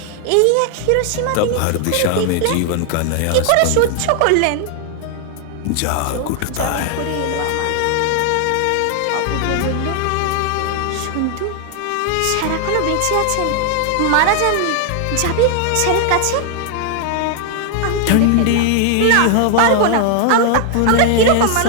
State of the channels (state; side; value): different; both; correlation 0.00